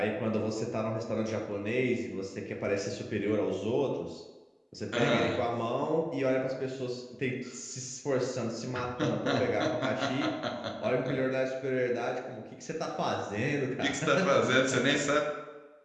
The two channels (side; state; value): both; identical; correlation 1.00